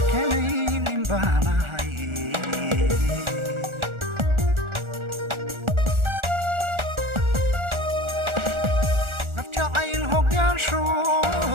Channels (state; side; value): late; left; 1.4 ms